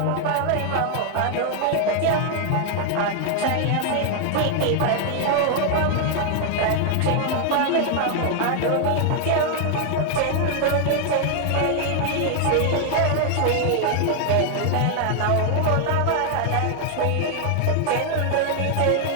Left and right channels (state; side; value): different; both; correlation 0.00